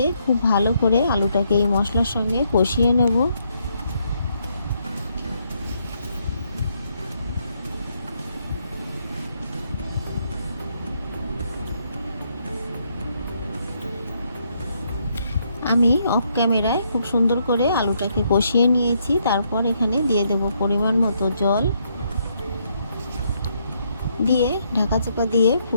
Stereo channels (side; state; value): both; inverted; correlation -0.75